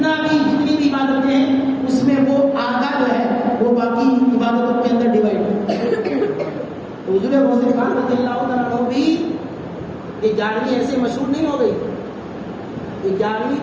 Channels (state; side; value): identical; both; correlation 1.00